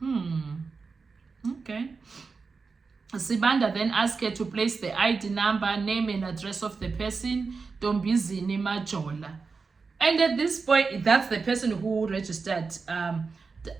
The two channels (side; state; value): left; quieter; 4.7 dB